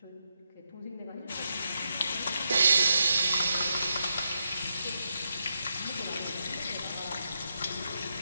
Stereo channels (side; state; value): both; inverted; correlation -0.83